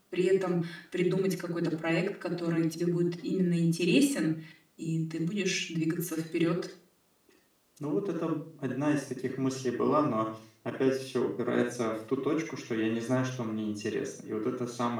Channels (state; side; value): identical; both; correlation 1.00